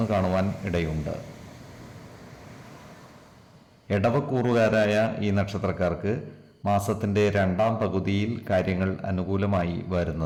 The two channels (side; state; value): both; identical; correlation 1.00